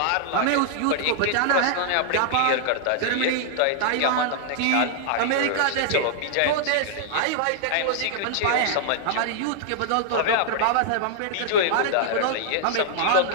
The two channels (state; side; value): different; both; correlation -0.01